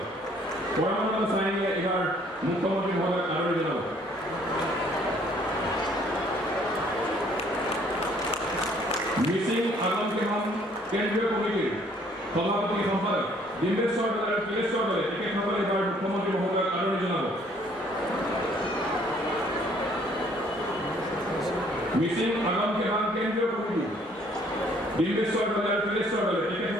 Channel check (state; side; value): normal; both; correlation 0.61